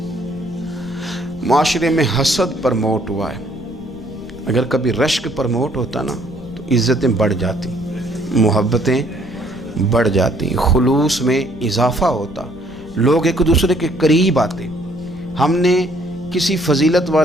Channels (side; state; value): left; noise; rumble, 19 dB below the sound